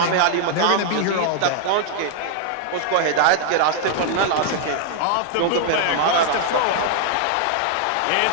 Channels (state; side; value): different; both; correlation 0.00